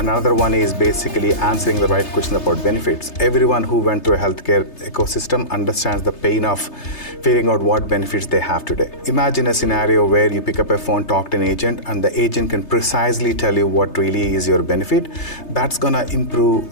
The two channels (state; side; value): late; right; 3.3 ms